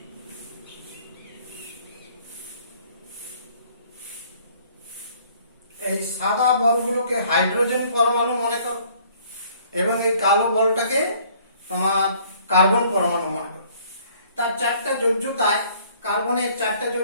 এই সাদা বলগুলোকে হাইড্রোজেন পরমাণু মনে করো এবং এই কালো বলটাকে তোমার কার্বন পরমাণু মনে করো। তার চারটা যোজ্যতায়, কার্বনের চারটা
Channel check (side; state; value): both; inverted; correlation -0.59